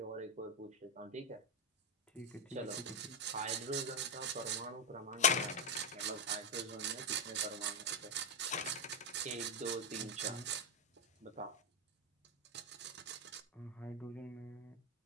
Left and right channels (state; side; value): normal; both; correlation 0.05